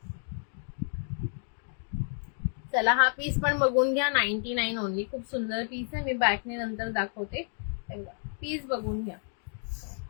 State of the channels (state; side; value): silent; right; 57 dB below the other